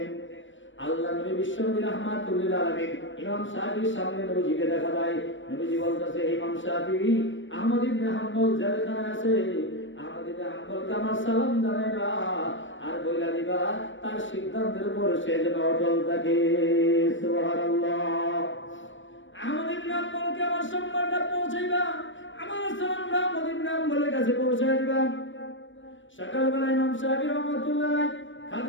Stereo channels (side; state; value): right; late; 0.56 ms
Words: আল্লাহ নবী বিশ্বনবী রাহমাতুল্লিল আলামিন ইমাম শাফির সামনে নবীজিকে দেখা দেয়। নবীজি বলতেছে, ইমাম শাফি আহমদ ইবনে হাম্বল জেলখানায় আছে, আহমদ ইবনে হাম্বলকে আমার সালাম জানাইবা আর বইলা দিবা তার সিদ্ধান্তের উপর সে যেন অটল থাকে। সুবহানাল্লাহ। আহমদ ইবনে হাম্বলকে আমার সম্মানটা পৌঁছাইবা, আমার সালামটা আহমদ ইবনে হাম্বলের কাছে পৌঁছাই দিবা। সকালবেলা ইমাম শাফি রাহমাতুল্লাহ